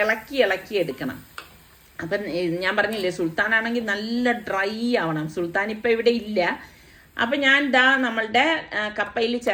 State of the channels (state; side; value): identical; both; correlation 1.00